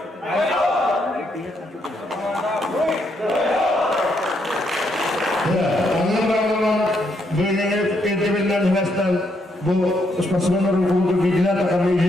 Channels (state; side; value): normal; both; correlation 0.76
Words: Ondan bölünüp entebirler üniversiteden bu sportsmenlerin bulduğu bilgiler takımı